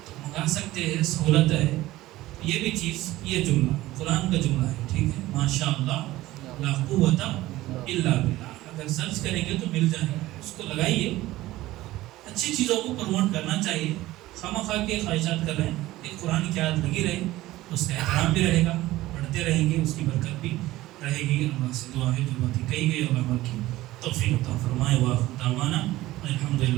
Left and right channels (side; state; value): left; quieter; 16.9 dB